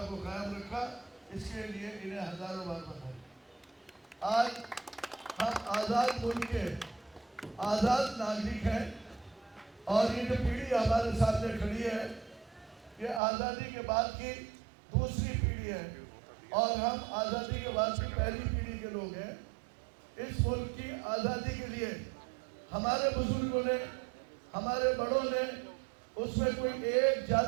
को कायम रखा, इसके लिए इन्हें हजारों बार बधाई। आज हम आज़ाद मुल्क के आज़ाद नागरिक हैं और ये जो पीढ़ी हमारे सामने खड़ी है, ये आज़ादी के बाद की दूसरी पीढ़ी है और हम आज़ादी के बाद की पहली पीढ़ी के लोग हैं। इस मुल्क की आज़ादी के लिए हमारे बुजुर्गों ने, हमारे बड़ों ने, उसमें कोई एक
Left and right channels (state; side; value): drops out; left; at 13.2 s